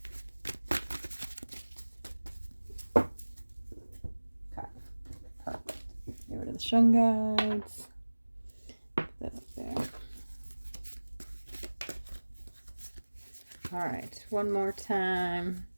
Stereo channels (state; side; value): inverted; both; correlation -1.00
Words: Get rid of the Shungites. Put that up there. All right, one more time.